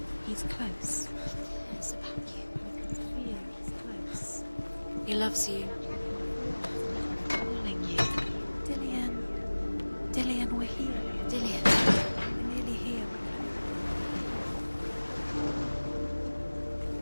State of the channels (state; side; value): inverted; both; correlation -1.00